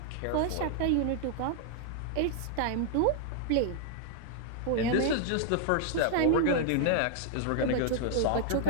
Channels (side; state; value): both; different; correlation 0.00